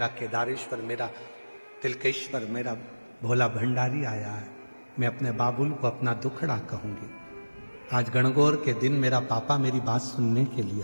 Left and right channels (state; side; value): inverted; both; correlation -1.00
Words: केदारेश्वर, मेरा तिलकेश्वर, मेरा भोला भंडारी आया है। मैं अपने बाबुल को अपना दुखड़ा कहूंगी। आज गणगौर के दिन मेरा पापा मेरी बात सुनने के लिए